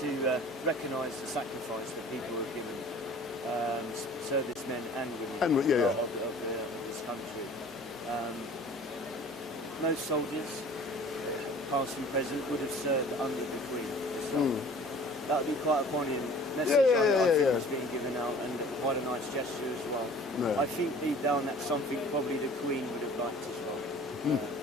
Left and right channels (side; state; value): right; noise; hum, 28 dB below the sound